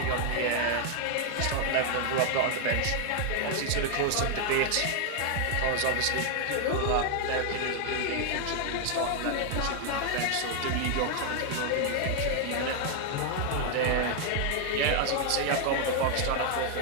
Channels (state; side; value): different; both; correlation 0.00